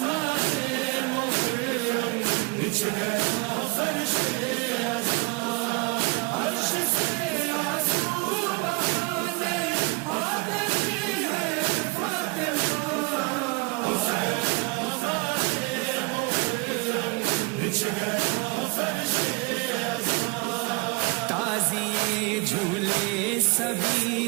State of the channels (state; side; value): quieter; left; 27.5 dB